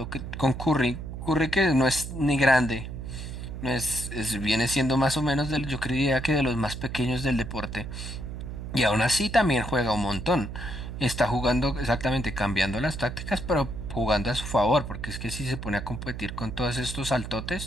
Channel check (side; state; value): right; noise; hum, 8 dB below the sound